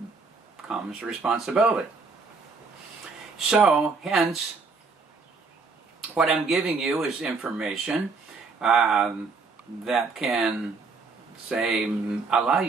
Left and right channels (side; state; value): left; quieter; 4.3 dB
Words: comes responsibility. So hence, what I'm giving you is information that can, say, allow